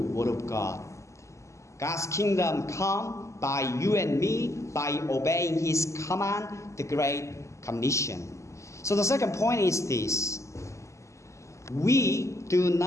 of God. God's kingdom come by you and me by obeying His command, the Great Commission. So the second point is this. We do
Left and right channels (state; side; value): late; right; 0.14 ms